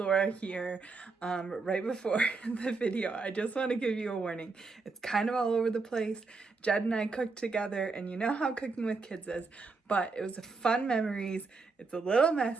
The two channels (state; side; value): quieter; left; 4.1 dB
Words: here. Right before the video, I just want to give you a warning. It's kind of all over the place. Jed and I cooked together, and you know how cooking with kids is, but it was fun memories. It's a little